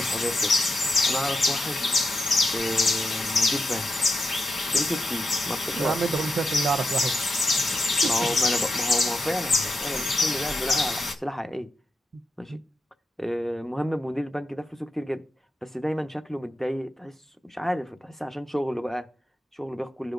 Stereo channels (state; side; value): normal; both; correlation 0.86